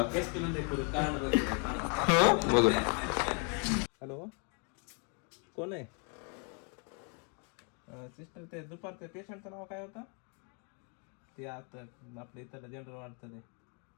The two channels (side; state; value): right; quieter; 37.7 dB